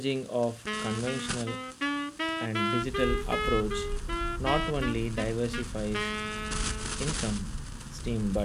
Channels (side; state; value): both; identical; correlation 1.00